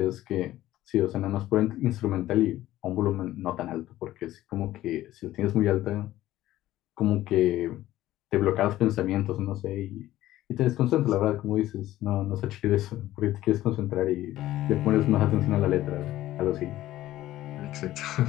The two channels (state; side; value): quieter; right; 14.8 dB